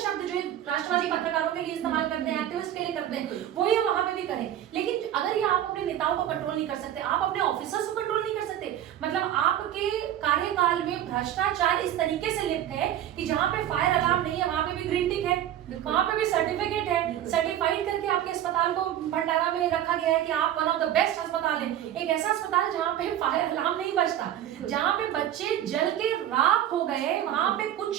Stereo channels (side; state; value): left; quieter; 11.5 dB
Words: जो राष्ट्रवादी पत्रकारों के लिए इस्तेमाल करते हैं, एक्टिविस्ट के लिए करते हैं, वही वहां पे भी करें। लेकिन अगर ये आप अपने नेताओं को कंट्रोल नहीं कर सकते, आप अपने ऑफिसर्स को कंट्रोल नहीं कर सकते, मतलब आपके कार्यकाल में भ्रष्टाचार इस तरीके से लिप्त है कि जहां पे फायर अलार्म नहीं है वहां पे भी ग्रीन टिक है, वहां पे भी सर्टिफिकेट है, सर्टिफाइड करके आपके अस्पताल को भंडारा में रखा गया है कि आप वन ऑफ द बेस्ट अस्पताल है। एक ऐसा अस्पताल जहां पे फायर अलार्म नहीं बजता, जहां पे बच्चे जल के राख हो गए, वहां पे